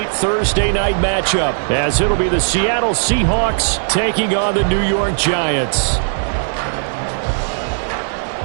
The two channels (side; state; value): left; silent; 55 dB below the other